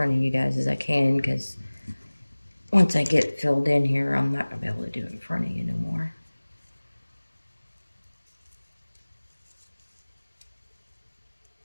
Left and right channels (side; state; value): both; inverted; correlation -1.00